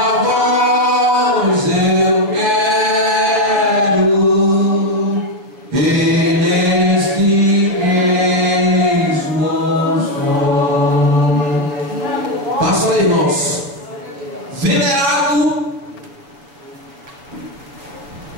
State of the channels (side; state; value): left; late; 7.2 ms